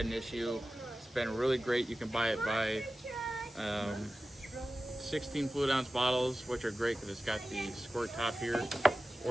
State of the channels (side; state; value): both; normal; correlation 0.95